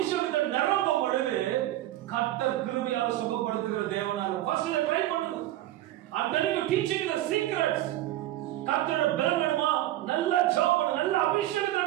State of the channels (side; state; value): left; quieter; 14.6 dB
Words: நிரம்பும் பொழுது கர்த்தர் கிருபையால் சுகப்படுத்துகிற தேவனாக ஃபர்ஸ்ட் ட்ரை பண்ணுங்க. I'm telling you, teaching you the secrets. கர்த்தரோட பலம் வேணுமா? நல்ல ஜெபம் பண்ணு, நல்ல அபிஷேகத்தை